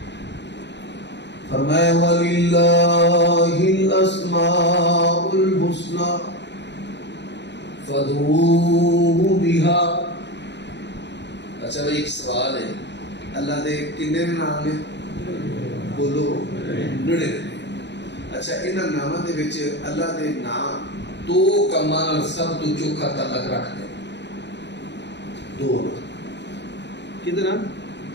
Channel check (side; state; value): right; late; 0.51 ms